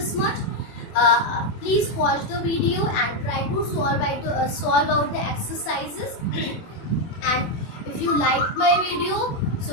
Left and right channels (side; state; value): right; late; 24 ms